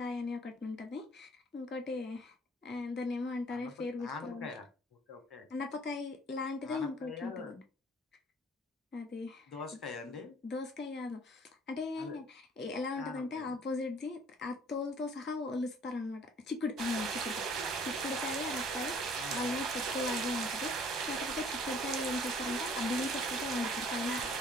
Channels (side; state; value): both; normal; correlation 0.56